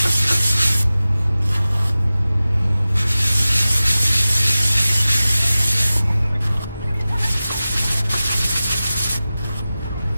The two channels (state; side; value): inverted; both; correlation -0.96